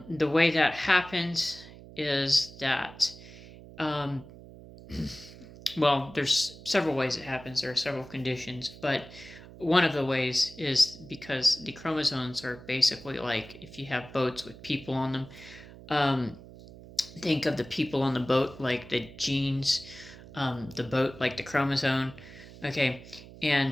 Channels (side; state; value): right; noise; hum, 18 dB below the sound